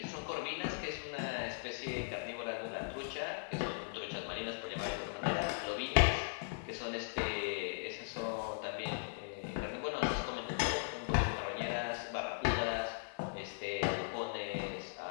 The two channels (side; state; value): right; silent; digital silence